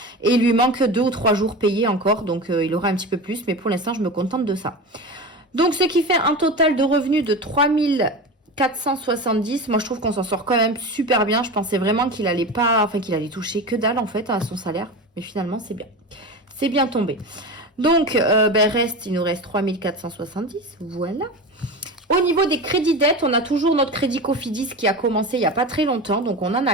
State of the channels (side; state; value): both; normal; correlation 0.27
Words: Et il lui manque 2 ou 3 jours payés encore. Donc, il aura un petit peu plus. Mais pour l'instant, je me contente de ça. Donc, ce qui fait un total de revenus de 3470. Moi, je trouve qu'on s'en sort quand même super bien. Je pensais vraiment qu'il allait toucher que dalle, en fait, à son salaire. Mais finalement, c'est bien. C'est bien tombé. Donc, il nous reste 3470. Voilà. Au niveau des crédits dettes, on a toujours notre crédit Cofidis qui a commencé il n'y a pas très longtemps. Donc, on n'en